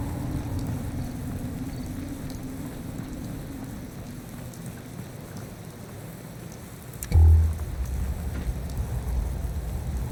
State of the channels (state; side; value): identical; both; correlation 1.00